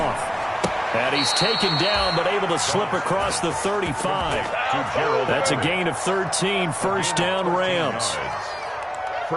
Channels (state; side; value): identical; both; correlation 1.00